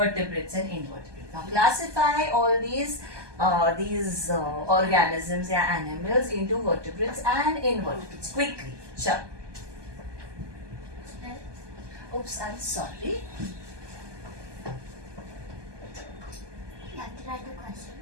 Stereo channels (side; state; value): left; late; 1.2 ms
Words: and invertebrates. Now classify all these organisms या animals into vertebrates and invertebrates quickly. Chal. Oops, I'm sorry. You have to write the question.